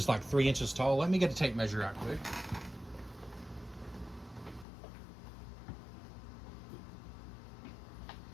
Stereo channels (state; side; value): drops out; right; at 4.7 s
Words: like 3 inches tall. Let me get a tape measure out quick.